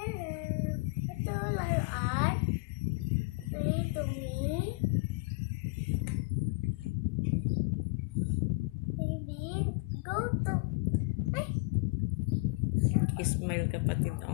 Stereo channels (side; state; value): right; quieter; 27.2 dB